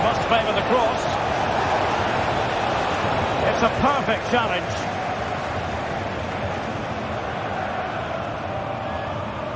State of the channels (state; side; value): identical; both; correlation 1.00